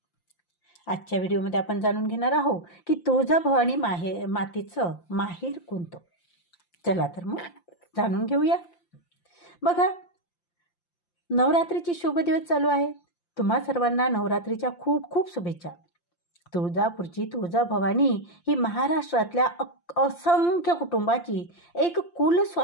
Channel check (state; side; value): late; right; 5.8 ms